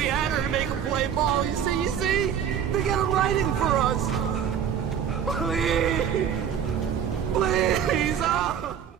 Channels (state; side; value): quieter; left; 8.5 dB